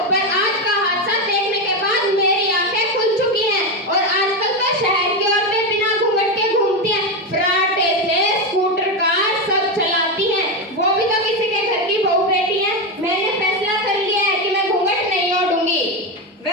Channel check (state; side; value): normal; both; correlation 0.12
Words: पर आज का हादसा देखने के बाद मेरी आंखें खुल चुकी हैं। और आजकल तो शहर की औरतें बिना घूंघट के घूमती हैं, फराटे से स्कूटर कार सब चलाती हैं। वो भी तो किसी के घर की बहू बेटी है। मैंने फैसला कर लिया है कि मैं घूंघट नहीं ओढ़ूंगी।